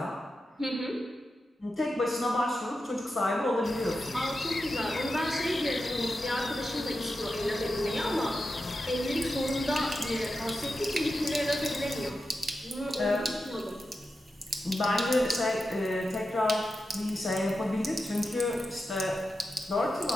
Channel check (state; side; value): normal; both; correlation 0.90